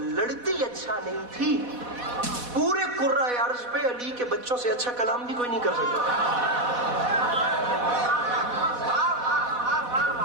اچھا نہیں تھی، پورے قرۂ ارض پہ علی کے بچوں سے اچھا کلام بھی کوئی نہیں کر سکتا۔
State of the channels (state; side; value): late; left; 4.1 ms